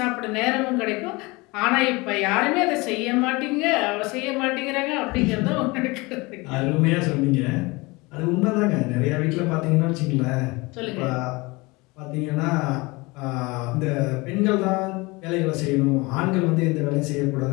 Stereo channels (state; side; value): quieter; right; 24.4 dB